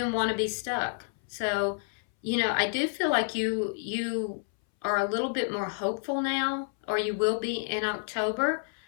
want to be stuck. So, you know, I do feel like you are a little bit more hopeful now, or you will be in October,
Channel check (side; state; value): right; silent; 58 dB below the other